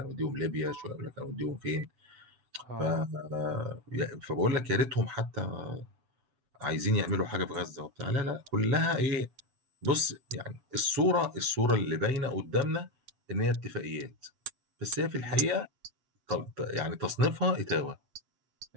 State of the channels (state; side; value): late; left; 7.8 ms